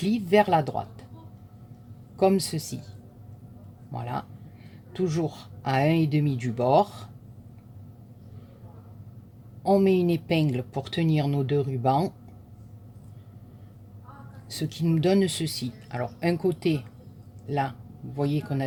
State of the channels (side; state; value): both; identical; correlation 1.00